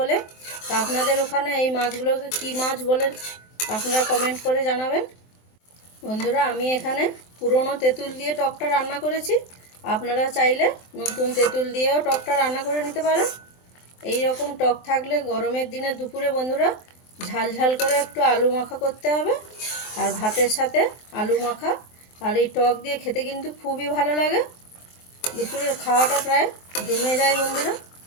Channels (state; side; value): late; right; 23 ms